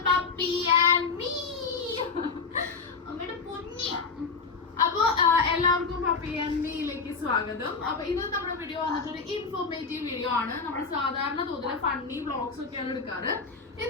Puppy and me. അപ്പോൾ എല്ലാവർക്കും puppy and മീയിലേക്ക് സ്വാഗതം. അപ്പോൾ ഇന്ന് നമ്മുടെ വീഡിയോ വന്നിട്ടൊരു ഇൻഫോർമേറ്റീവ് വീഡിയോ ആണ്. നമ്മൾ സാധാരണ തോതിൽ ഫണ്ണി വ്ളോഗ്സ് ഒക്കെയാണ് എടുക്കാറ്.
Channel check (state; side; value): quieter; right; 4.7 dB